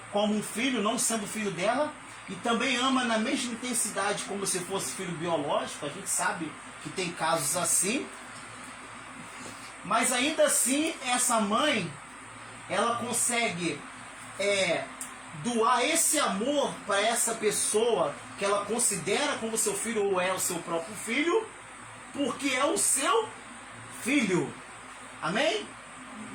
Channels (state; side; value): noise; right; hum, 29 dB below the sound